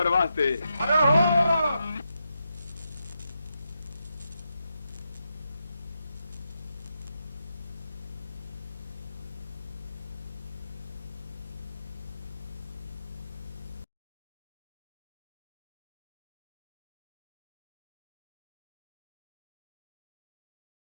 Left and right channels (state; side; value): inverted; both; correlation -0.85